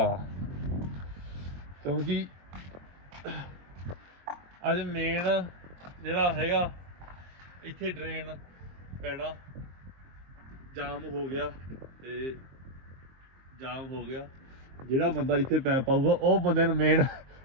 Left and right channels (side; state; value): left; late; 23 ms